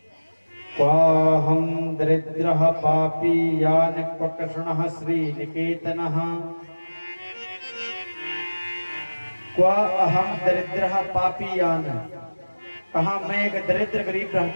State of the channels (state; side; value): inverted; both; correlation -1.00